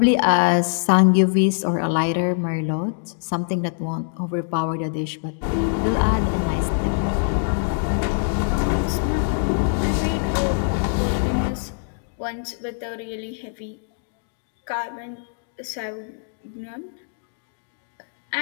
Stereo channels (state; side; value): silent; right; digital silence